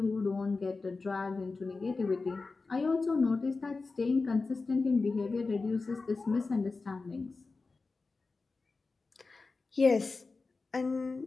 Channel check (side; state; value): right; quieter; 3.9 dB